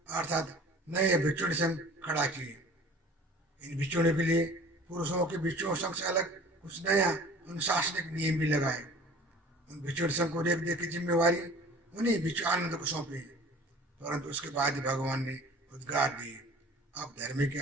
अर्थात नए भिक्षुणी संघ खड़ा किए। इन भिक्षुणियों के लिए पुरुषों के भिक्षुओं संघ से अलग कुछ नया अनुशासनिक नियम भी लगाए। उन भिक्षुणी संघ को रेख दे की जिम्मेवारी उन्हीं भिक्षु आनंद को सौंपी। परंतु उसके बाद ही भगवान ने उद्गार दिए, अब धर्म की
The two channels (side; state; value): both; normal; correlation 0.46